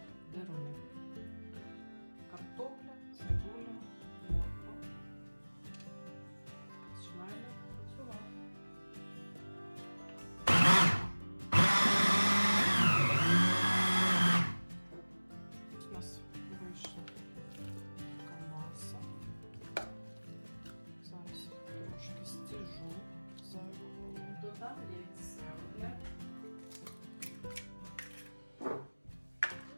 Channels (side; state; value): both; inverted; correlation -1.00